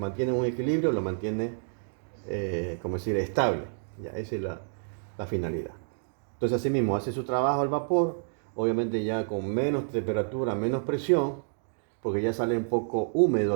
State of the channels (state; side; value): silent; left; digital silence